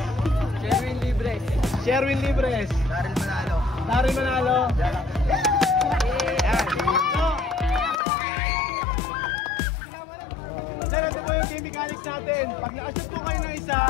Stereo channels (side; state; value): right; drops out; at 8.0 s